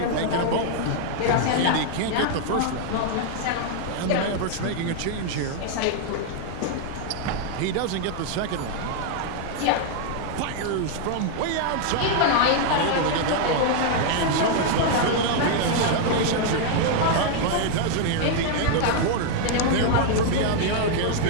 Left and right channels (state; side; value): different; both; correlation 0.00